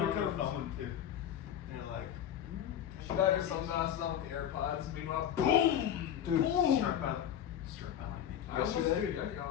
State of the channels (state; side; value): quieter; right; 9.9 dB